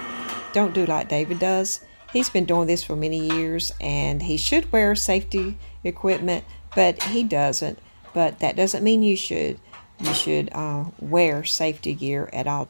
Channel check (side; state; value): both; inverted; correlation -1.00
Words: don't do like David does. He's been doing this for many years and he should wear safety equipment, but he doesn't. But that doesn't mean you should. You should wear safety gear at all